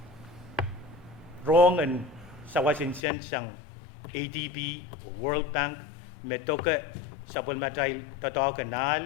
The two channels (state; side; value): drops out; right; at 3.0 s